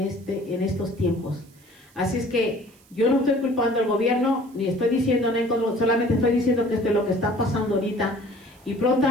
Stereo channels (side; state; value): right; noise; hiss, 29 dB below the sound